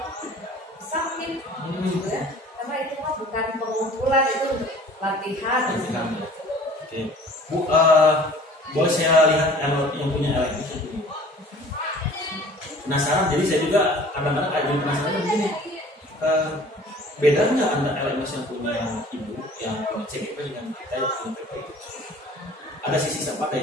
submit gitu ya. Karena itu mah bukan pengumpulan, itu untuk latihan. Latihan, ya. Oke. Bu, boleh saya lihat yang punya LMS itu? Penasaran, jadi saya juga kadang-kadang ada penasaran begini. Beda nggak antara LMS yang punya ibu, yang punya CGP dengan kita yang punya PP? Ada sisi sama, ada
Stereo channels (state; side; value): normal; both; correlation 0.48